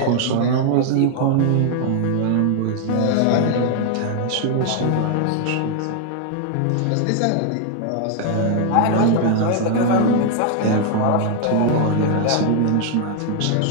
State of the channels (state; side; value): different; both; correlation 0.00